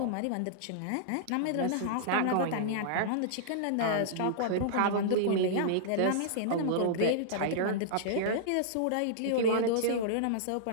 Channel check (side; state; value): both; different; correlation -0.02